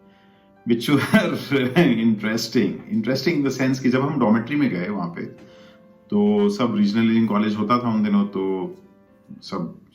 विच वर इंटरेस्टिंग इन द सेंस कि जब हम डॉर्मेट्री में गए वहां पे, तो सब रीजनल इंजीनियरिंग कॉलेज होता था उन दिनों. तो सब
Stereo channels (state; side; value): identical; both; correlation 1.00